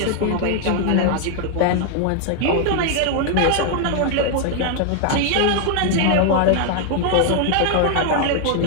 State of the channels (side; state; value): both; different; correlation 0.00